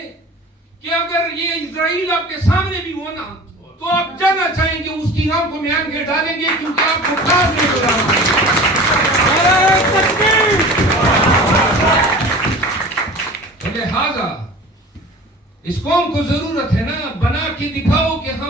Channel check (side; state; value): both; normal; correlation 0.40